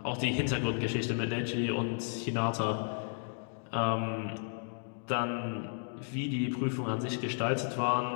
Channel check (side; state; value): right; silent; digital silence